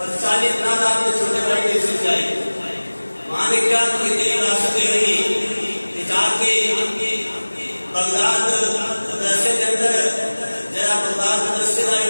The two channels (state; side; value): inverted; both; correlation -1.00